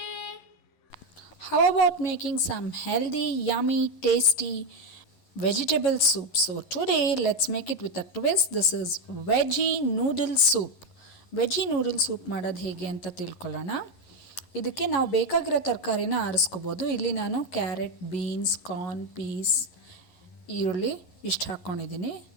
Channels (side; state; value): right; late; 11 ms